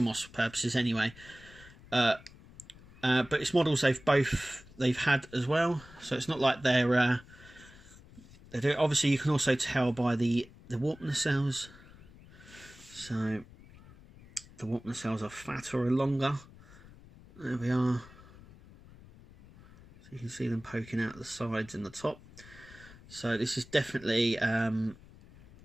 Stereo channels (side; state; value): left; noise; rumble, 21 dB below the sound